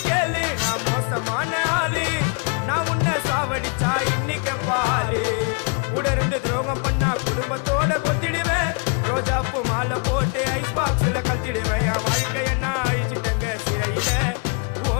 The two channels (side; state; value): right; quieter; 35.8 dB